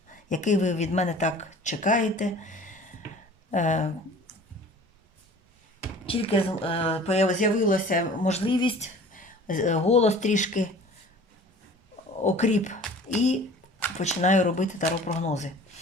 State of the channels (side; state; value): both; normal; correlation 0.45